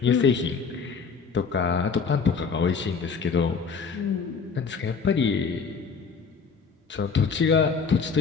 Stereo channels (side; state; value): right; quieter; 5.5 dB